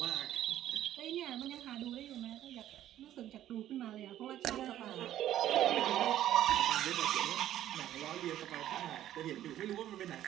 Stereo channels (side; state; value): left; quieter; 12.4 dB